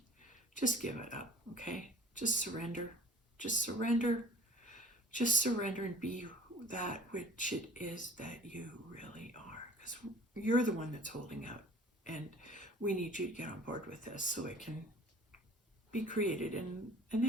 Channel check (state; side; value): normal; both; correlation 0.45